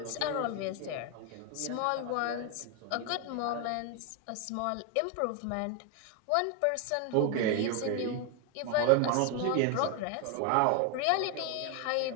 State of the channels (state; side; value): different; both; correlation 0.01